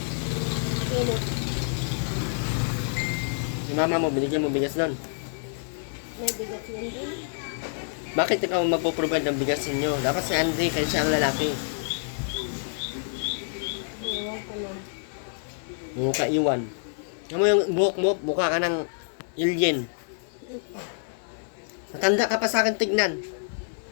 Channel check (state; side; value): silent; right; 60 dB below the other